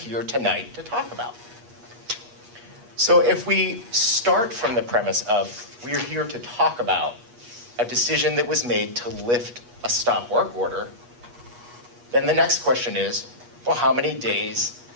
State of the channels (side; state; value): left; late; 8.3 ms